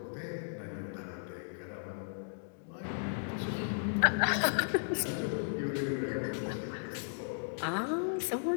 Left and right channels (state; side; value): silent; right; digital silence